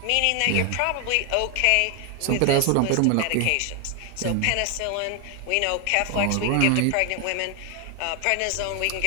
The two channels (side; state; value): both; different; correlation 0.01